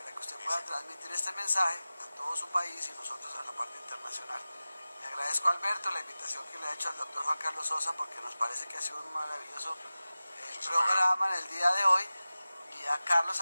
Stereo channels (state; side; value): inverted; both; correlation -0.96